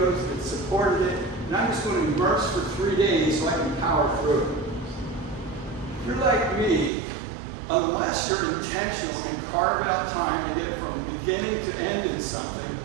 that supported it, and I'm just going to immerse for 3 days so I can power through it. If you're like me, unless you're intentional and carve out time to get from beginning to end in something,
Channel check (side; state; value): left; drops out; at 6.9 s